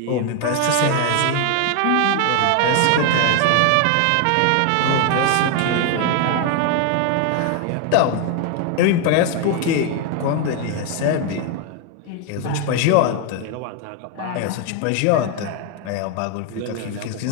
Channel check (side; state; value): both; different; correlation 0.01